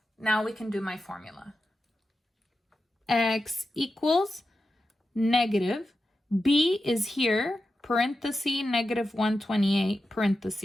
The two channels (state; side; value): normal; both; correlation 0.91